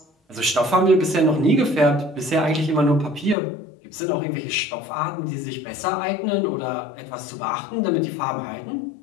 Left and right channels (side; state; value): right; drops out; at 3.4 s